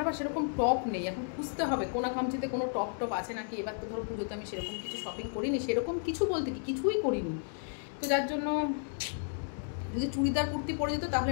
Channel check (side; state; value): right; silent; digital silence